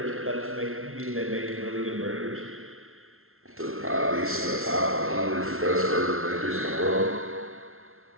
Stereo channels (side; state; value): left; late; 0.62 ms